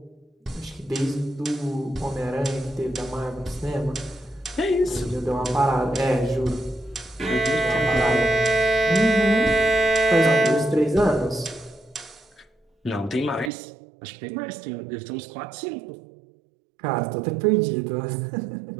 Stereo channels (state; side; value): drops out; left; at 13.5 s